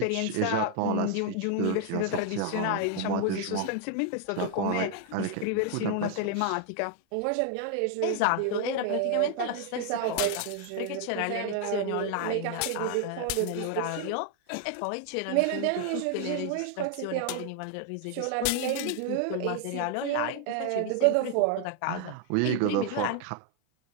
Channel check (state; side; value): different; both; correlation 0.00